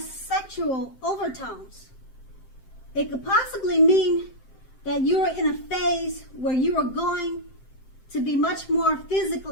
sexual overtones. It could possibly mean that you are in a phase where you are going to be much more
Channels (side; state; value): right; late; 7.7 ms